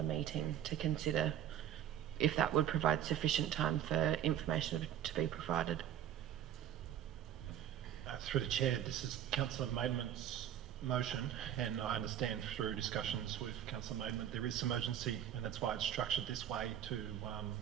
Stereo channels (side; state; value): left; quieter; 10.5 dB